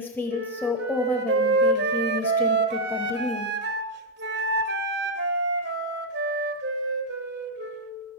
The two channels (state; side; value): normal; both; correlation -0.02